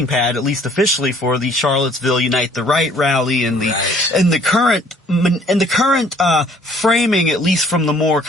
pad, at least officially, for the Charlottesville Unite the Right rally and the current framing, at least from the more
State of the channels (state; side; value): normal; both; correlation 0.58